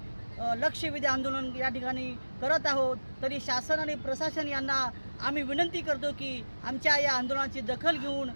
लक्षवेधी आंदोलन या ठिकाणी करत आहोत। तरी शासन आणि प्रशासन यांना आम्ही विनंती करतो की आमच्या या आंदोलनाची दखल घेऊन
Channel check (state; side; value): inverted; both; correlation -1.00